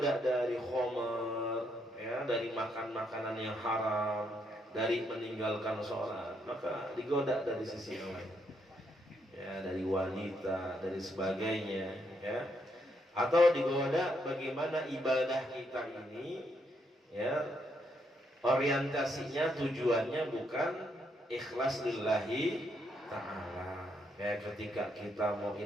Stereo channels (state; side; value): normal; both; correlation 0.76